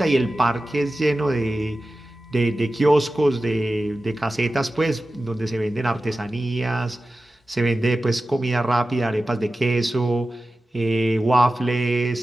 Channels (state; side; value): normal; both; correlation 0.94